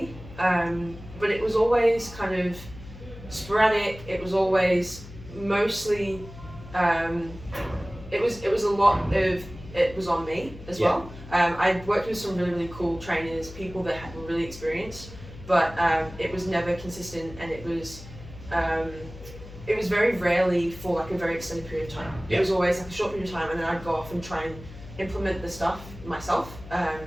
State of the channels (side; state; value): left; noise; hum, 15 dB below the sound